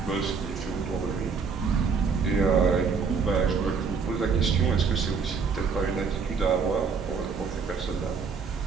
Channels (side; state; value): left; quieter; 5.4 dB